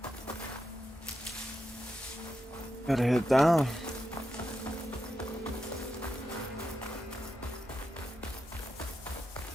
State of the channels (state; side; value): normal; both; correlation 0.87